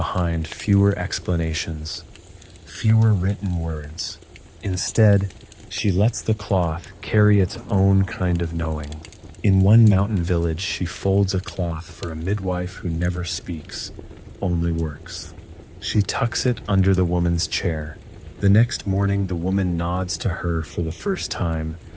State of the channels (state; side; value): identical; both; correlation 1.00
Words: fewer explanations, fewer written words. Instead, she lets the cloth carry its own kind of knowing. In one mountain village, she folds a cloth for a midwife who never speaks, only works. She tucks it under the woman's chair. The next morning, the woman nods to her for the first time,